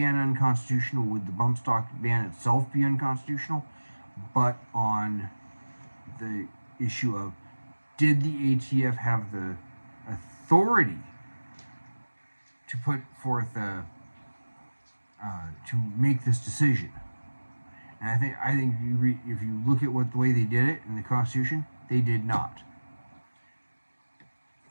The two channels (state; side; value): inverted; both; correlation -1.00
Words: unconstitutional? Would the bump stock ban itself be unconstitutional? But on the issue of, did the ATF have the authority to put forth to make this decision? And I think if you look at the way they did it in the Constitution, they did not.